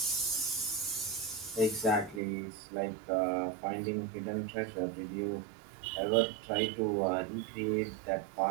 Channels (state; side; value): drops out; left; at 2.2 s